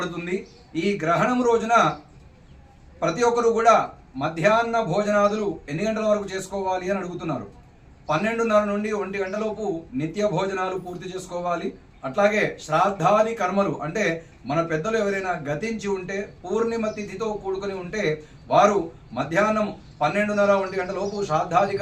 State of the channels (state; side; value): identical; both; correlation 1.00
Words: ఈ గ్రహణం రోజున ప్రతి ఒక్కరు కూడా మధ్యాహ్న భోజనాదులు ఎన్ని గంటల వరకు చేసుకోవాలి అని అడుగుతున్నారు. 12:30 నుండి 1 గంటలోపు నిత్య భోజనాలు పూర్తి చేసుకోవాలి. అట్లాగే శ్రాద్ధాది కర్మలు అంటే మన పెద్దలు ఎవరైనా గతించి ఉంటే పూర్ణిమ తిథితో కూడుకొని ఉంటే వారు మధ్యాహ్నం 12:30 1 గంటలోపు